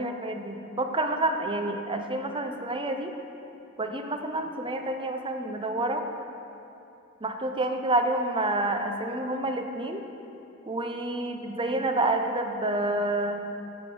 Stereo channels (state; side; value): normal; both; correlation 0.18